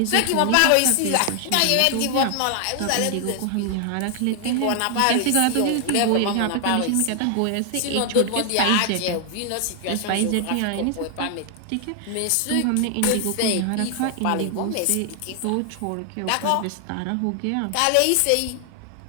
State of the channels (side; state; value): both; different; correlation 0.00